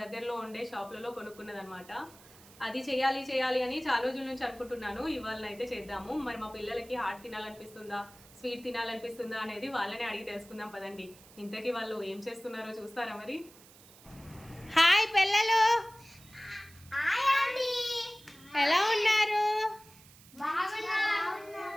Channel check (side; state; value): right; noise; hiss, 23 dB below the sound